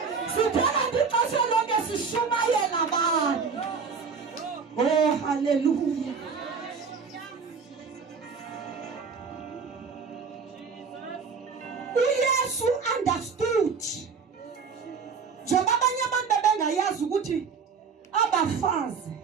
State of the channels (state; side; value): quieter; left; 5.6 dB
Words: sithanda ixesha lonke sishumayela abantu. Oh hallelujah. uYesu understood njengoba abanye abantu bengayazi ukuthi abafazi